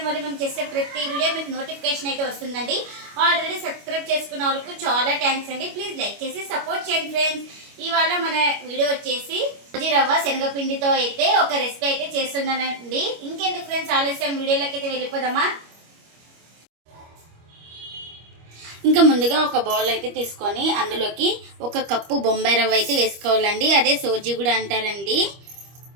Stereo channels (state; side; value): late; left; 25 ms